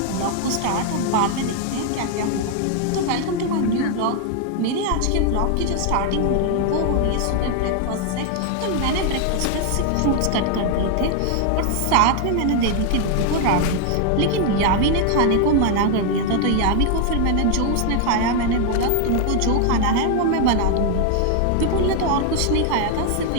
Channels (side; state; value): both; different; correlation 0.00